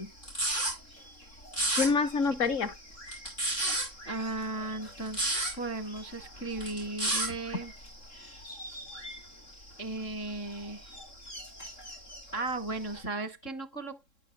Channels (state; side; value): late; right; 3.7 ms